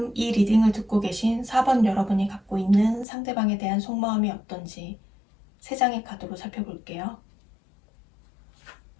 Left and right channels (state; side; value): drops out; right; at 3.1 s